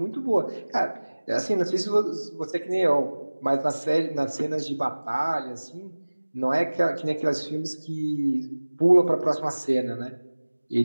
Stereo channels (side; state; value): both; inverted; correlation -1.00